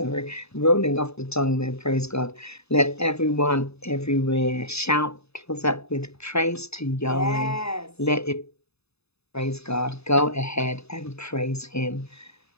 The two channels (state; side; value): late; right; 0.79 ms